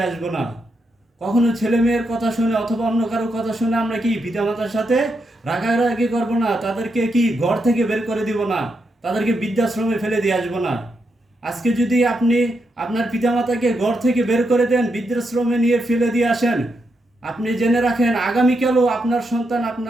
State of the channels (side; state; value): both; normal; correlation 0.82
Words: আসবো না। কখনো ছেলে মেয়ের কথা শুনে অথবা অন্য কারোর কথা শুনে আমরা কি পিতামাতার সাথে রাগারাগি করবো না, তাদেরকে কি ঘর থেকে বের করে দিব না, তাদেরকে বৃদ্ধাশ্রমে ফেলে দিয়ে আসবো না। আজকে যদি আপনি আপনার পিতামাতাকে ঘর থেকে বের করে দেন, বৃদ্ধাশ্রমে নিয়ে ফেলে দিয়ে আসেন, আপনি জেনে রাখেন আগামীকালও আপনার সন্তান